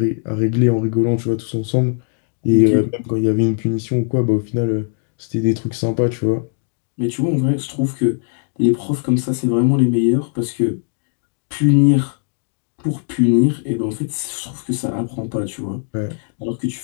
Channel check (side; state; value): right; silent; digital silence